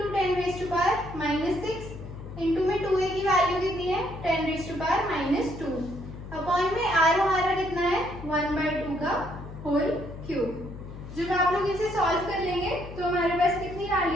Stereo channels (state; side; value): noise; left; hum, 12 dB below the sound